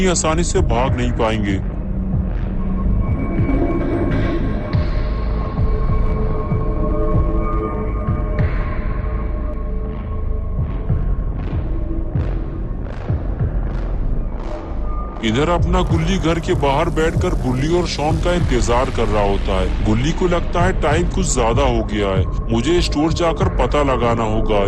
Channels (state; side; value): identical; both; correlation 1.00